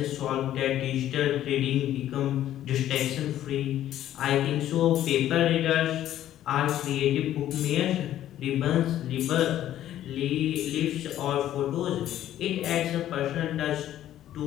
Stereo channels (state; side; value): quieter; right; 12.2 dB